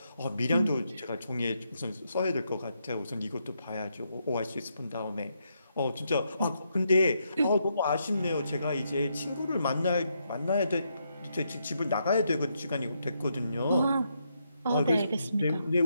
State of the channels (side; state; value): both; inverted; correlation -0.79